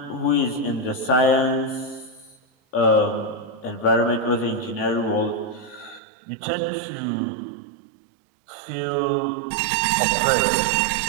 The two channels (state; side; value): drops out; left; at 6.0 s